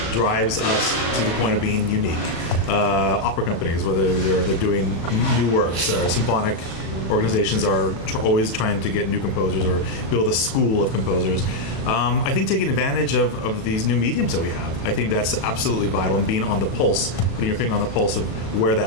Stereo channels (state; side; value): late; right; 35 ms